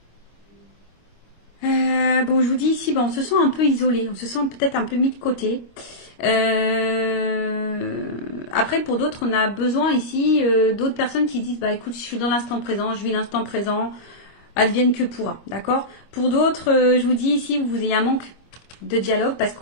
bon, je vous dis ici, bon, on se sent un peu isolé, on se sent peut-être un peu mis de côté. Après, pour d'autres, on a besoin ici d'autres personnes qui disent, bah écoute, je suis dans l'instant présent, je vis l'instant présent, advienne que pourra, d'accord? Pour d'autres, je vous dis ici, vous ayez un manque de dialogue parce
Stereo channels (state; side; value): late; right; 25 ms